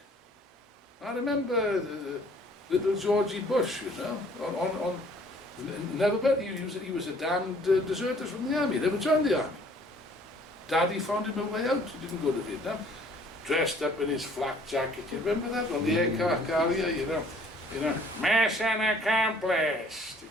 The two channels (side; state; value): both; normal; correlation 0.57